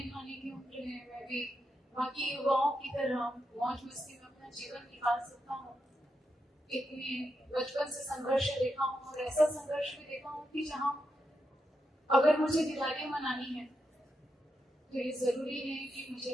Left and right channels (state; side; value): normal; both; correlation 0.85